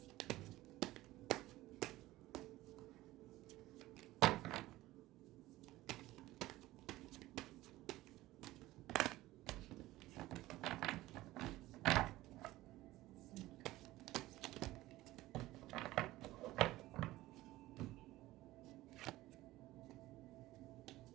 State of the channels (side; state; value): left; quieter; 17.2 dB